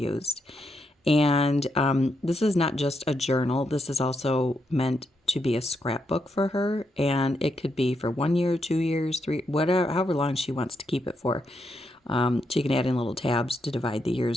And this is not just a journal. This is also meant to be a scrapbook for her. And it could be for 1 year, 2 years, 3, whatever, however long she wants to keep it for. She can add in little tabs to divide the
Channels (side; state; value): both; normal; correlation 0.81